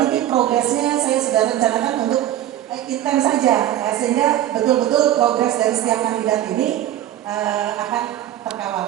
ini progresnya saya sudah rencanakan untuk intens saja sehingga betul-betul progres dari setiap kandidat ini akan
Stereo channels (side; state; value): left; quieter; 12.3 dB